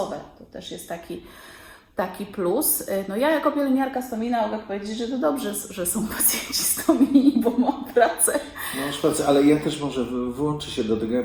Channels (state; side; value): identical; both; correlation 1.00